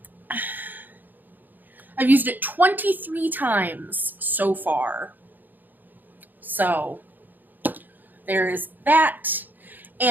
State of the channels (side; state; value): left; late; 0.087 ms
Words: I've used it 23 times so far. So there is that.